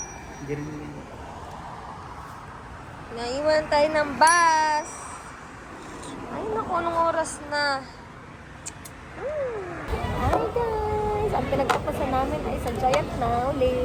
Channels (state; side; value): identical; both; correlation 1.00